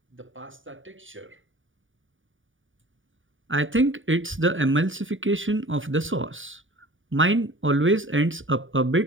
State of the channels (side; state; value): left; late; 0.57 ms